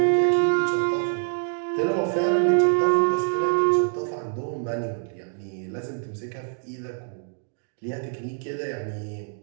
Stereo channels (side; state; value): left; silent; 56 dB below the other